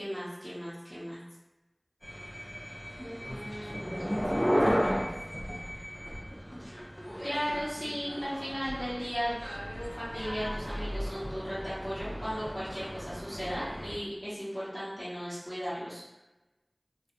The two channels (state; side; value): identical; both; correlation 1.00